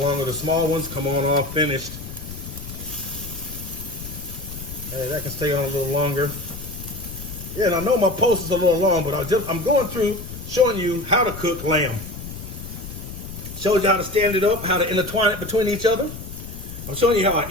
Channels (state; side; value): noise; left; rumble, 11 dB below the sound